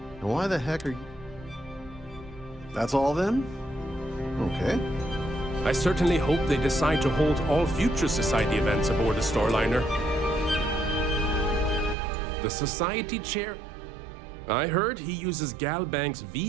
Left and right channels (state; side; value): drops out; left; at 12.0 s